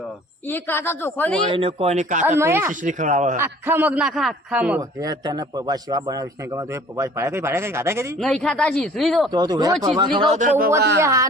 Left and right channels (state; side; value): normal; both; correlation 0.50